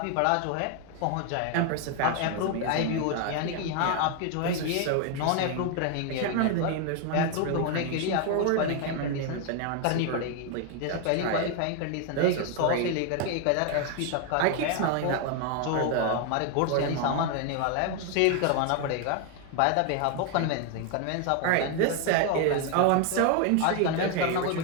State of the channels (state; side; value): different; both; correlation 0.01